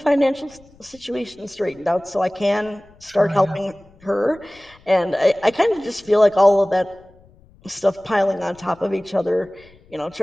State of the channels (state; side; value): noise; left; rumble, 28 dB below the sound